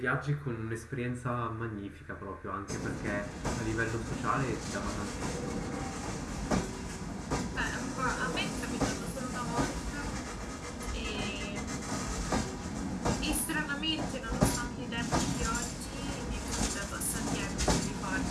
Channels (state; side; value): identical; both; correlation 1.00